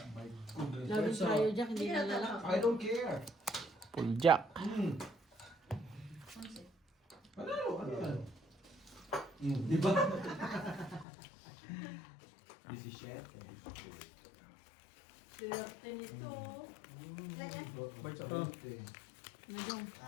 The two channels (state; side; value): drops out; right; at 11.1 s